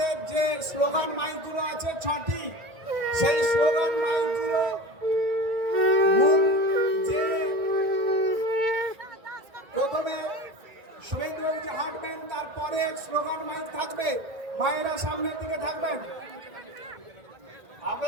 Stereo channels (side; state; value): left; late; 1.9 ms